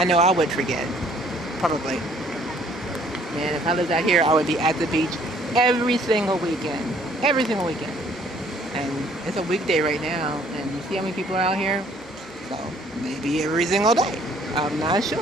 know I would forget, probably. Man, if I lived out here, I would be at the beach every single weekend. Every single weekend. And it's a weekday right now, and you see how many people are out here? So maybe every single day. I'm not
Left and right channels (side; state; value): both; normal; correlation 0.60